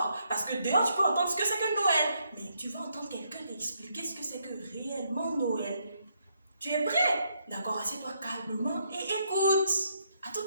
Parce que dehors, tu peux entendre ce que c'est que Noël. Mais tu vas entendre quelqu'un t'expliquer ce que c'est que réellement Noël. Tu es prêt? D'accord, assieds-toi calmement et écoute. À tout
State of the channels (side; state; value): both; inverted; correlation -0.76